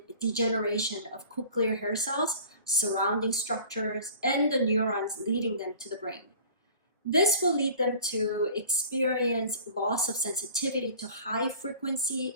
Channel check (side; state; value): both; inverted; correlation -0.44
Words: degeneration of cochlear hair cells, surrounding structures, and the neurons leading them to the brain. This will lead them to experience loss of sensitivity to high frequency